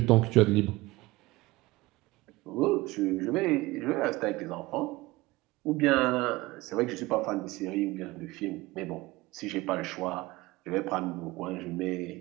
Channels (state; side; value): quieter; left; 20.2 dB